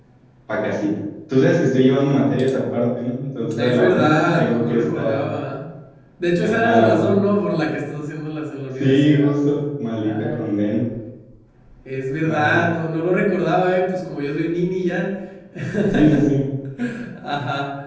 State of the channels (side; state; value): both; identical; correlation 1.00